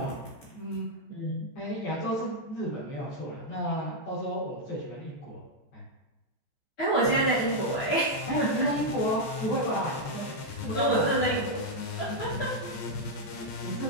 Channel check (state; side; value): late; right; 14 ms